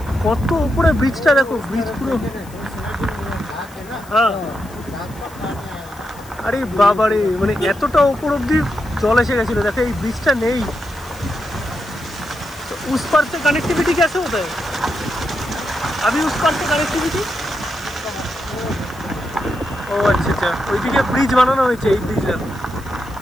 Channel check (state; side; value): noise; left; hiss, 22 dB below the sound